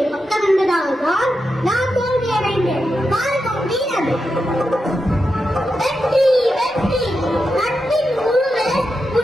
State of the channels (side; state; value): both; normal; correlation 0.88